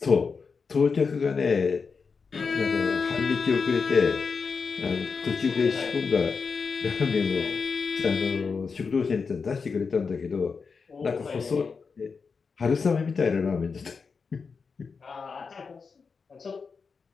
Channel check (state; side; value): quieter; right; 5.2 dB